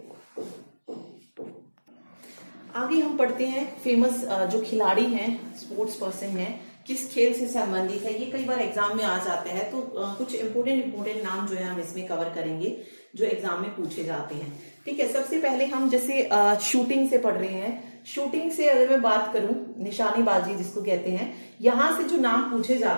आगे हम पढ़ते हैं फेमस जो खिलाड़ी हैं, स्पोर्ट्स पर्सन हैं, किस खेल से संबंधित है। ये कई बार एग्जाम में आ जाते हैं, तो कुछ इंपोर्टेंट नाम जो है हम इसमें कवर करेंगे जो एग्जाम में पूछे जाते हैं, ठीक है। सबसे पहले हम जैसे शूटिंग से पढ़ रहे हैं, शूटिंग से अगर मैं बात करूं, निशानेबाजी जिसको कहते हैं, यहां से जो नाम पूछे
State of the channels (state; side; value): inverted; both; correlation -1.00